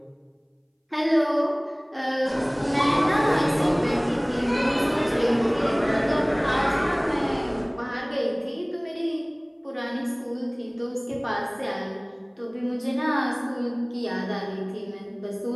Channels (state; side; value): identical; both; correlation 1.00